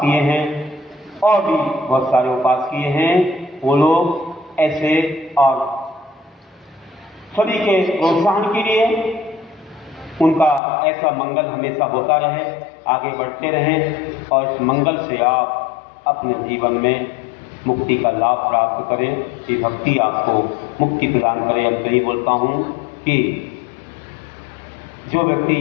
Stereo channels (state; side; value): drops out; right; at 10.6 s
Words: किए हैं और भी बहुत सारे उपवास किए हैं, वो लोग ऐसे और सभी के प्रोत्साहन के लिए उनका ऐसा मंगल हमेशा होता रहे, आगे बढ़ते रहें और इस मंगल से आप अपने जीवन में मुक्ति का लाभ प्राप्त करें। ये भक्ति आपको मुक्ति प्रदान करे। अब यही बोलता हूँ कि जो व्यक्ति